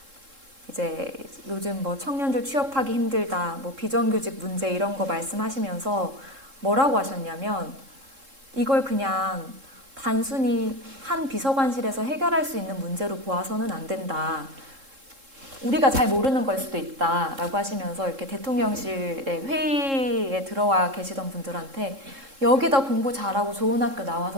이제 요즘 뭐 청년들 취업하기 힘들다, 뭐 비정규직 문제 이런 거 말씀하시면서 뭐라고 하셨냐면 이걸 그냥 단순히 한 비서관실에서 해결할 수 있는 문제로 보아서는 안 된다. 우리가 잘 모르는 걸 수도 있다라고 하시면서 이렇게 대통령실의 회의에 들어와 계시던 분들한테 여기다 공부 잘하고 좋은 학교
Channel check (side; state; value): left; late; 3.7 ms